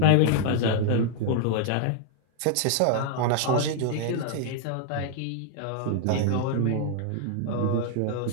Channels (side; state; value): both; different; correlation 0.00